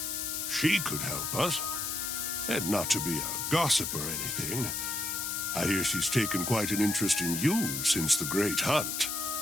She could help us. And not to be a gossip or anything, I hear she's taken quite an interest in you since the Great Hunt.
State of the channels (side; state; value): left; noise; hiss, 2 dB below the sound